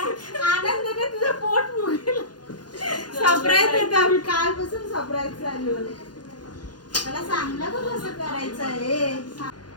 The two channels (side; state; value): right; late; 0.70 ms